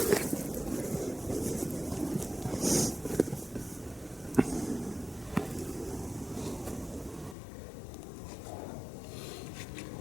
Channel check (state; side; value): drops out; right; at 7.4 s